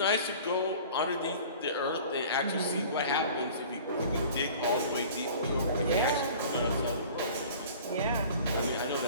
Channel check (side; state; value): both; inverted; correlation -0.44